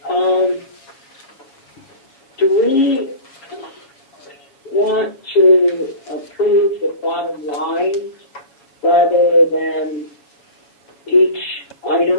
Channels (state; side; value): late; right; 7.3 ms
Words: Do we want to approve the bottom line rather than each